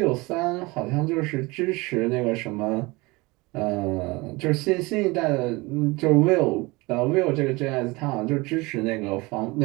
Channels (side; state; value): left; quieter; 23.8 dB